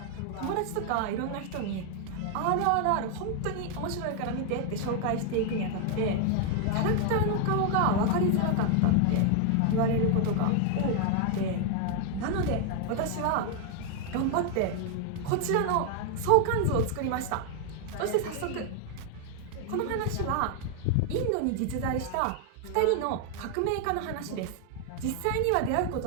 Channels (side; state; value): both; different; correlation 0.00